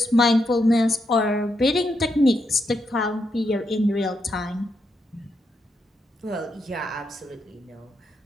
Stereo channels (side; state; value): both; normal; correlation 0.82